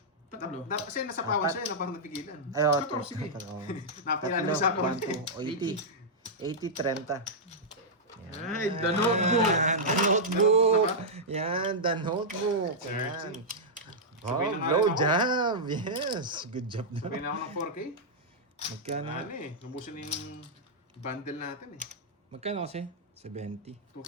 Tatlo. Kasi nasa pawan siya, no? Parang napigilan. Ay, oh, 14, sige. Napilala Tatlo, mo sa pawan. 1, 2, 80. 80, 30. Ay, the notebook. Yan, the notebook. Yan, the notebook. Yan. Oh, Sabay na nga blow rin ako. job. Yes. Good job na. Sabi na ako ng 4K. Magkano? Ano eh, nabusan na yung bundle natin eh. Magkano kasi? 70. 2K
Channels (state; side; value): normal; both; correlation -0.08